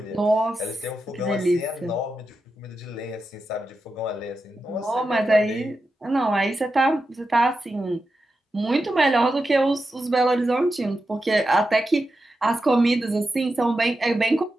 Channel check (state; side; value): normal; both; correlation 0.89